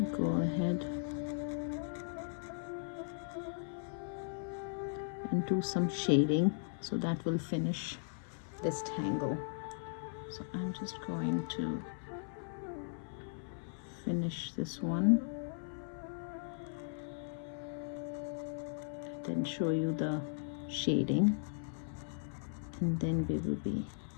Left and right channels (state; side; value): silent; right; 53 dB below the other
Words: go ahead and do some shading, so that will finish this tangle. So I'm just going to finish this one, then show you the shading, and then we will be